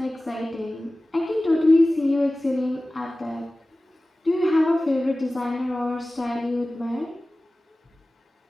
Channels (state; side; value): normal; both; correlation 0.97